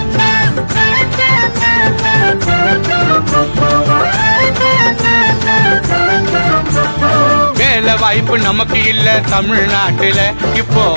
வேலை வாய்ப்பு நமக்கு இல்ல தமிழ்நாட்டுல, இப்போ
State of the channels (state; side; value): inverted; both; correlation -1.00